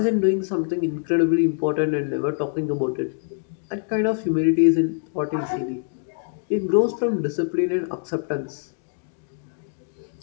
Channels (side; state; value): right; silent; digital silence